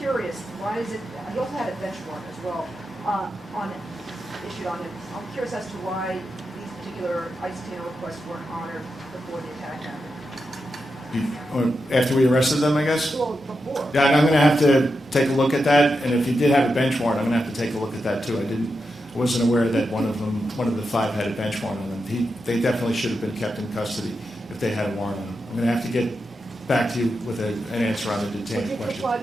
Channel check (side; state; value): both; normal; correlation 0.87